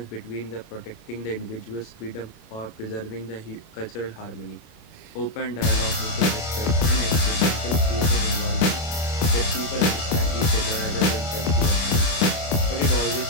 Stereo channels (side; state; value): right; late; 26 ms